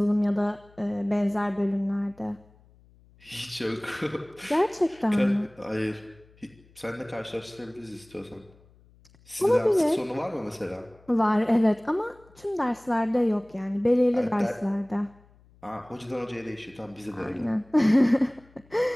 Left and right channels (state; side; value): noise; left; hum, 28 dB below the sound